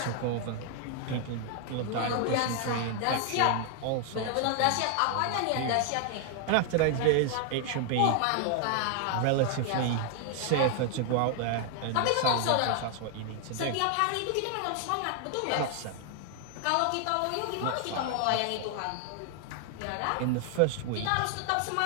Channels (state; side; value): different; both; correlation 0.00